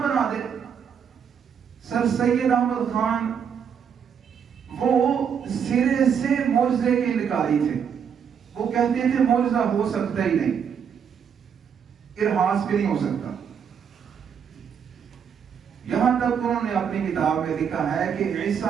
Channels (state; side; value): quieter; left; 7.5 dB